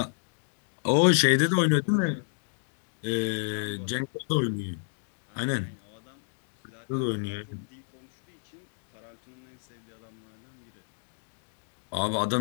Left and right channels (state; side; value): silent; right; digital silence